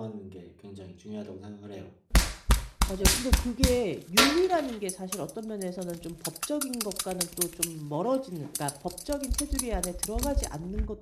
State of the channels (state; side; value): identical; both; correlation 1.00